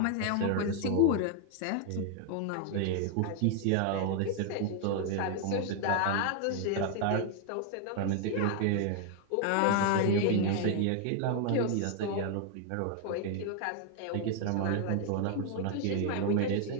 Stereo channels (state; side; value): different; both; correlation 0.00